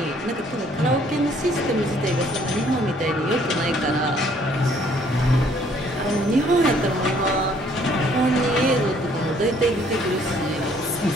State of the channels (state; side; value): normal; both; correlation 0.62